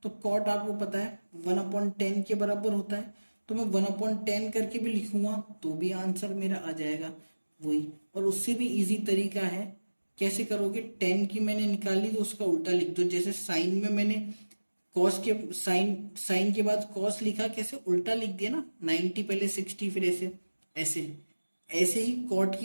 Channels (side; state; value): both; inverted; correlation -1.00